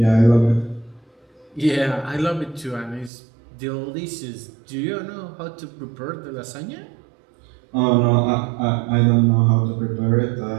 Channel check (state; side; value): drops out; left; at 3.1 s